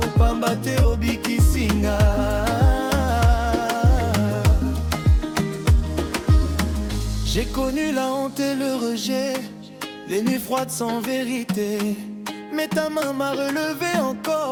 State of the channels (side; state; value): both; identical; correlation 1.00